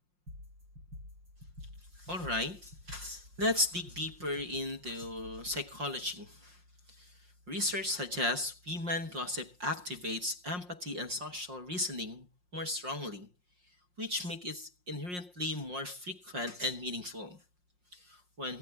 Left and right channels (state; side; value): late; left; 5.6 ms